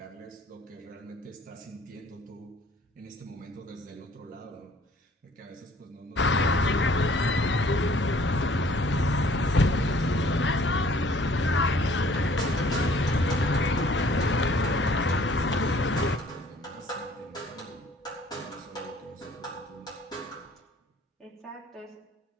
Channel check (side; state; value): both; normal; correlation 0.56